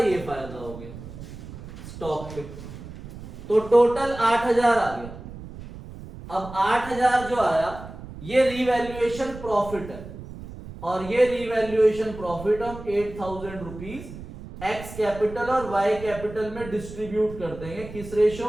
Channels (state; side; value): noise; right; rumble, 13 dB below the sound